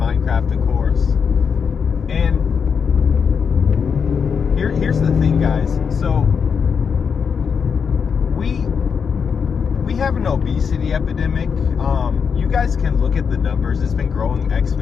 of course. And here's the thing, guys. So we have an obesity epidemic. You guys can look at the numbers. It's been growing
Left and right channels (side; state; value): right; quieter; 6.4 dB